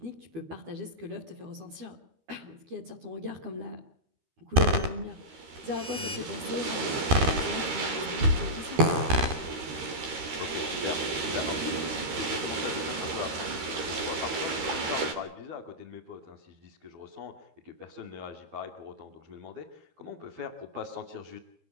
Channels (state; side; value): late; left; 13 ms